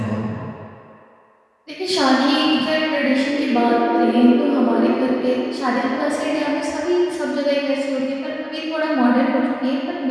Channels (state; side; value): identical; both; correlation 1.00